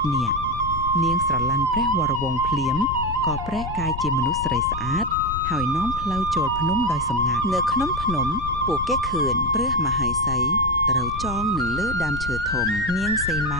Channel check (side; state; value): left; noise; rumble, 8 dB below the sound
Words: នាគនាងស្រឡាញ់ព្រះវរវង្សភ្លាមក៏ប្រែកាយជាមនុស្សស្រីស្អាតហើយនាំផ្លូវចូលភ្នំដោយសម្ងាត់នៅក្នុងភ្នំពួកគេឃើញព្រះមហេសីត្រូវចងនៅលើដើមឈើធំនាងសីម